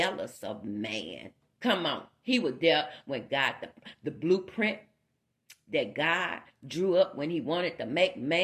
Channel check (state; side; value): identical; both; correlation 1.00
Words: of man. Come on. He was there when God, the blueprint that God drew up when he wanted to make